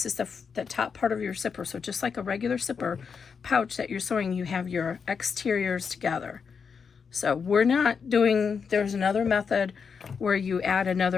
is the top part of your zipper. So just like a regular zipper pouch that you're sewing, you have your exteriors together. So we're not doing, there's another method where you add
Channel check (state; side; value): quieter; right; 6.0 dB